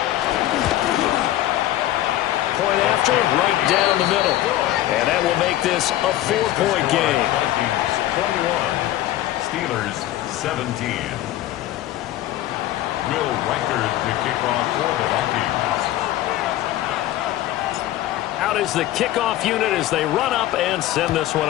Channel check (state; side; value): quieter; right; 14.2 dB